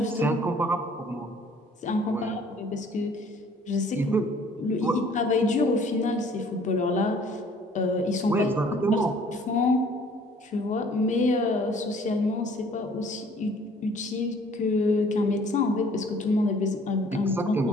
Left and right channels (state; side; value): normal; both; correlation 0.56